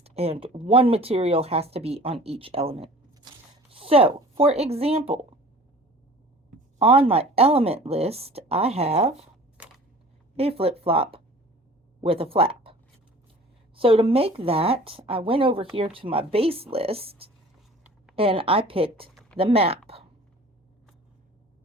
and one material has to be on each element. So, for example, on my element list, I have a flip-flop with a flap. So to make that, I went over here to my base list, and I picked the map.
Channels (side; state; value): both; normal; correlation 0.45